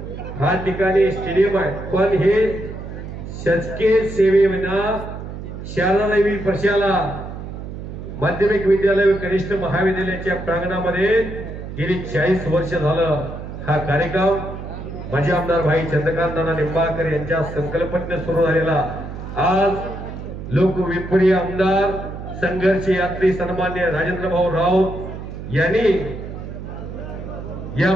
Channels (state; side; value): noise; right; hum, 9 dB below the sound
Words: हा ठिकाणी स्टेडियम आहे. पण हे शासकीय सेवेविना शारदादेवी प्रशाला माध्यमिक विद्यालय व कनिष्ठ महाविद्यालयाच्या प्रांगणामध्ये गेली 40 वर्ष झालं हा कार्यक्रम माजी आमदार भाई चंद्रकांत नाना निंबाळकर यांच्या संकल्पनेने सुरू झालेला. आज लोकविप्रिय आमदार संघर्ष यात्री सन्मान्य राजेंद्र भाऊ राऊत यांनी या